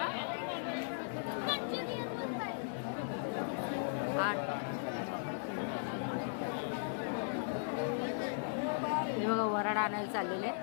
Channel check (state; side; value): silent; right; digital silence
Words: 8 हे बघा वराड आणायला चाललेले